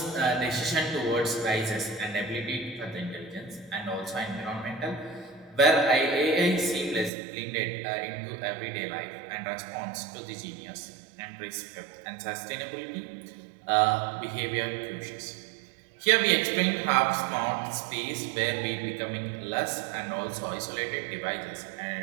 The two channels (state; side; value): drops out; left; at 7.1 s